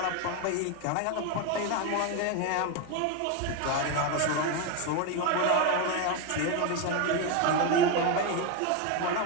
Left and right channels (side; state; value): both; different; correlation 0.02